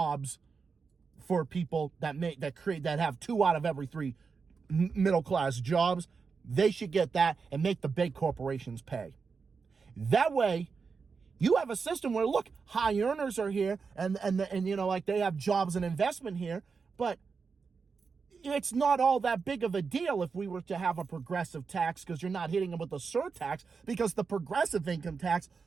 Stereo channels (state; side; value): quieter; left; 5.2 dB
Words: for people that have 2 out of every 3 middle-class jobs. They should get that and make the big corporations pay. That way, you have a system where, look, high earners are here and like they have jobs and investment here, but it's not all that big of a deal if we were to have a progressive tax, because you're not hitting them with a surtax, because the progressive income tax